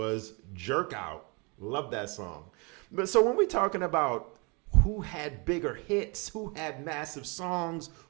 Jerk Out. Love that song. But so when we're talking about who had bigger hits, who had massive songs,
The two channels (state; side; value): quieter; left; 30.8 dB